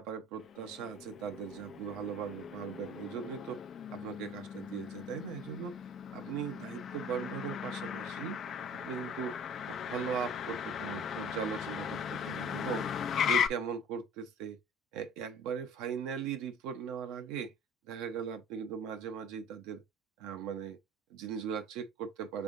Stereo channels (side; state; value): both; normal; correlation 0.46